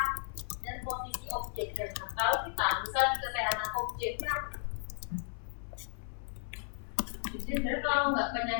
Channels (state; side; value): silent; right; 55 dB below the other